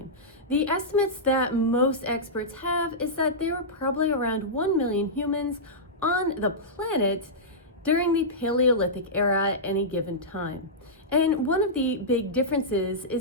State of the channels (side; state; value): both; normal; correlation -0.13